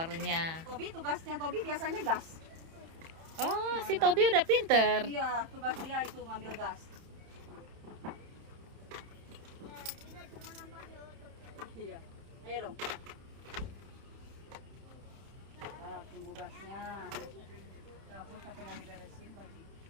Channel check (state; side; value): late; left; 30 ms